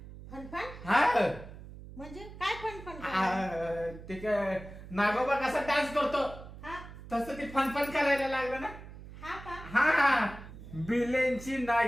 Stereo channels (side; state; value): right; noise; hum, 15 dB below the sound